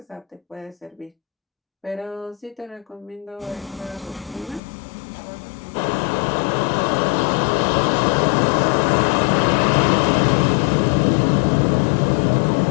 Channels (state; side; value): drops out; right; at 4.6 s